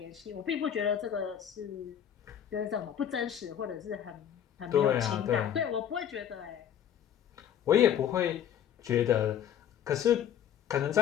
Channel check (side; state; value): right; quieter; 9.5 dB